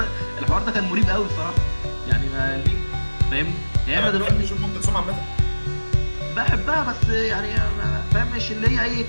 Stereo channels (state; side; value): inverted; both; correlation -1.00